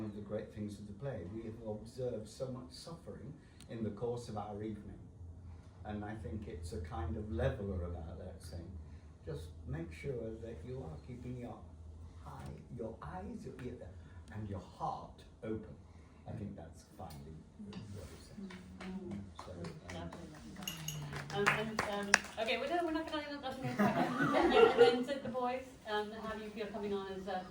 of the great things of the play. We have observed so much suffering in the course of our evening. And I think it's a kind of leveler about that, saying, just make sure that you are keeping your eyes, your ear, and your heart open. I think that's finally what it says. Okay, we're not going to and then to the boys, how do you feel coming on as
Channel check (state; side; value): identical; both; correlation 1.00